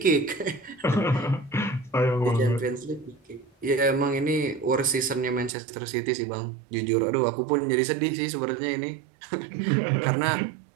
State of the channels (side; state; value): left; drops out; at 5.5 s